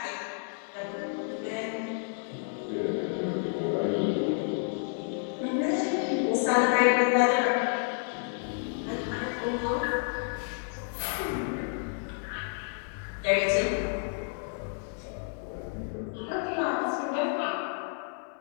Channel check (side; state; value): right; silent; 58 dB below the other